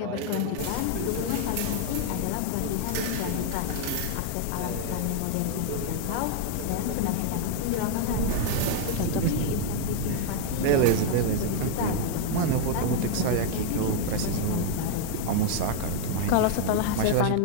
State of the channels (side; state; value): both; different; correlation 0.00